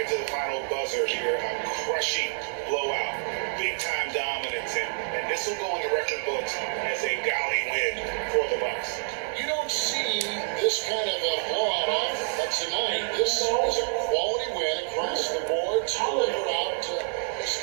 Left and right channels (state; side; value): silent; left; 60 dB below the other